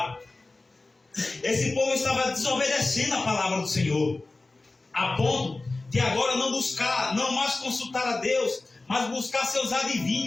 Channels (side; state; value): right; quieter; 3.3 dB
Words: Esse povo estava desobedecendo a palavra do Senhor, a ponto de agora não mais consultar a Deus, mas buscar seus